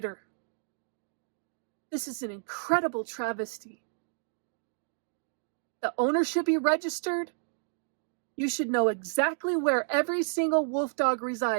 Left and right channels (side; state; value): left; silent; digital silence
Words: This is an incredible travesty. The owner should be registered. You should know exactly where every single wolf dog